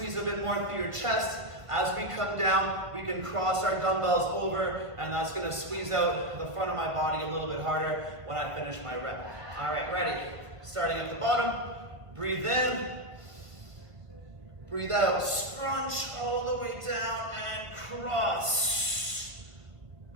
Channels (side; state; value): left; late; 1.5 ms